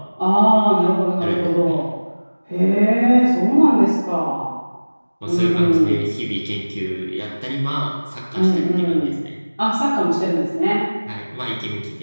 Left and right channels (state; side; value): inverted; both; correlation -1.00